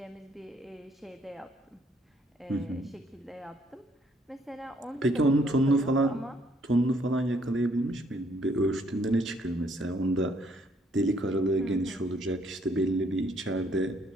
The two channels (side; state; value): both; normal; correlation 0.67